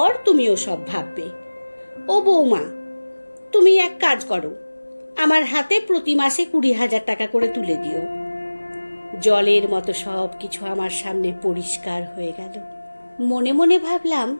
তুমিও সব ভাববে। ও বৌমা, তুমি এক কাজ করো, আমার হাতে প্রতি মাসে 20,000 টাকা করে তুলে দিও। জলের মতো সব কিছু আমার সামনে পরিষ্কার হয়ে গেল। মনে মনে ভাবলাম,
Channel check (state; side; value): inverted; both; correlation -1.00